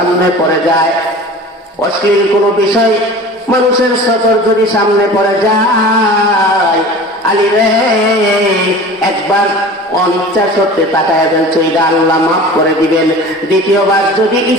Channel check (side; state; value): both; normal; correlation 0.39